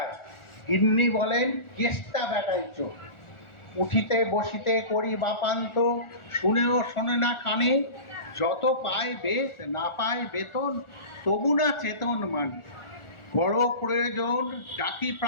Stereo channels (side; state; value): right; late; 1.4 ms